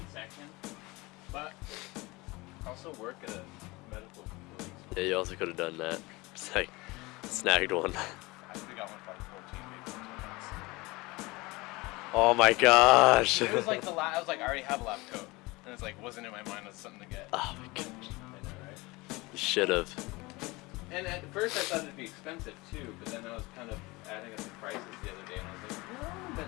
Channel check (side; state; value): right; quieter; 23.1 dB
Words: section, but I also work at a medical facility. Yeah, you also could have done that. Just like snagged one. I think I got one for like 14 maybe. Oh my gosh. It was like I was like, I already have a lab coat, and it's like wasn't in my mind as something to get. Oh my gosh. I know, right? You should have. And at first I thought it'd be expensive too, but then I was kind of adding up the prices the other day, and I was like, no, it hasn't